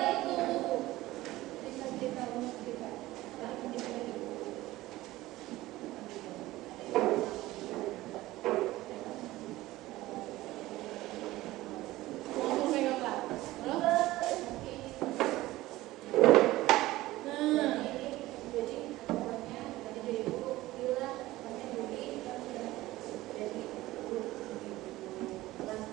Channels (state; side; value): quieter; left; 17.4 dB